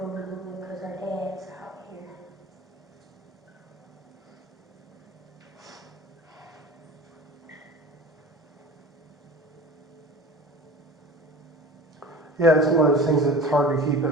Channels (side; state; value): both; normal; correlation 0.38